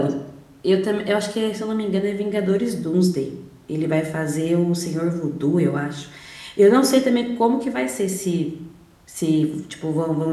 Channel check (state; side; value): identical; both; correlation 1.00